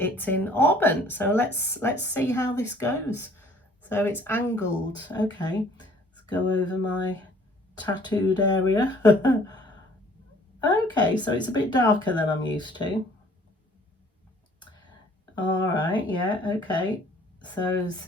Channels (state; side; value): normal; both; correlation 0.56